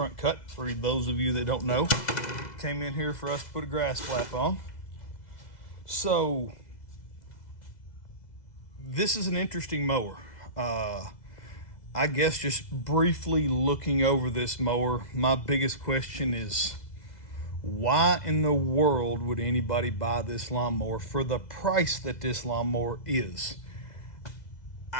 cut for those of you that don't know. Came in here for us to put a grass flap on. So this is an interesting mower. I guess just briefly looking over this mower, my biggest question is, why in the world would anybody buy this lawnmower for the price that this lawnmower is?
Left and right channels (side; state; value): right; late; 2.0 ms